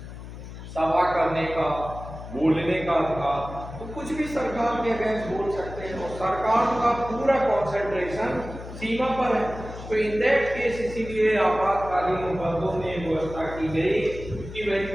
सभा करने का, बोलने का अधिकार, तो कुछ भी सरकार के अगेंस्ट बोल सकते हैं, और सरकार का पूरा कॉन्सेंट्रेशन सीमा पर है। तो इन दैट केस इसीलिए आपातकालीन उपबंधों में व्यवस्था की गई कि वह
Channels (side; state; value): left; noise; hum, 12 dB below the sound